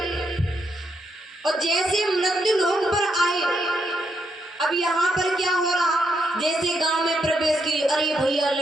और जैसे मृत्यु लोक पर आए, अब यहाँ पर क्या हो रहा, जैसे गांव में प्रवेश की, अरे भैया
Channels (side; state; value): both; normal; correlation 0.79